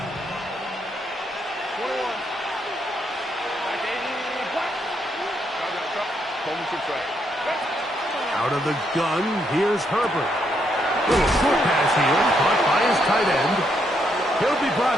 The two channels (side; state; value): both; normal; correlation 0.76